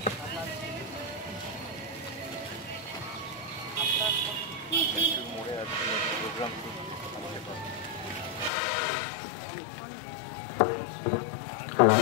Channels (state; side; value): drops out; right; at 8.5 s